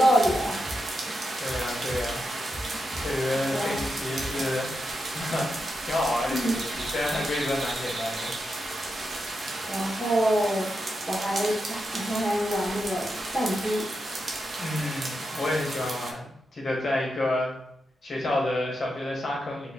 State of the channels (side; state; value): both; normal; correlation 0.87